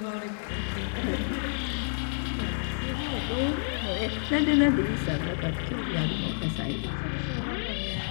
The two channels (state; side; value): silent; right; digital silence